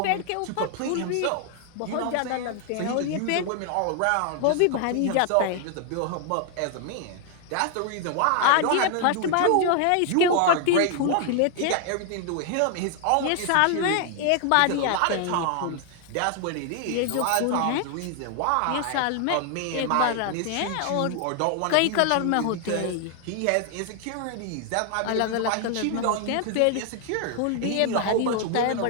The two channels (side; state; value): both; different; correlation 0.00